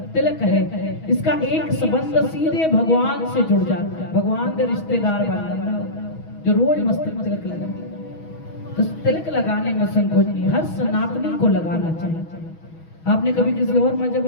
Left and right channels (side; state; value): right; late; 6.2 ms